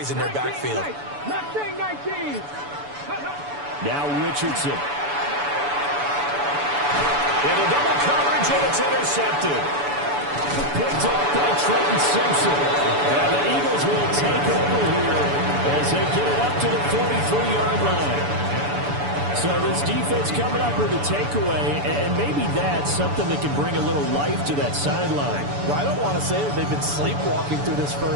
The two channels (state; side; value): late; left; 7.0 ms